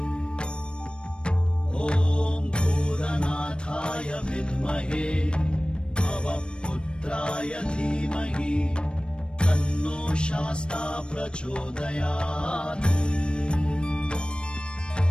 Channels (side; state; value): right; late; 0.055 ms